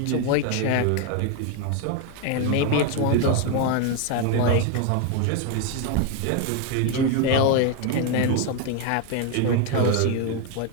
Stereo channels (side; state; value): both; different; correlation 0.01